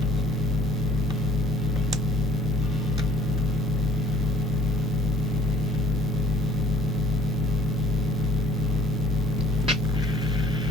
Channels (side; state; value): both; normal; correlation 0.55